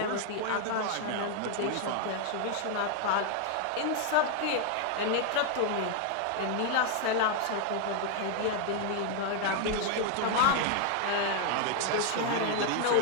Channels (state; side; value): different; both; correlation 0.00